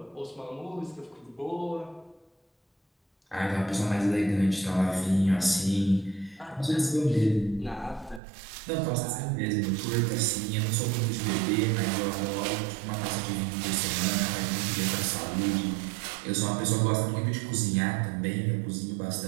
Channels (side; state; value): left; drops out; at 8.2 s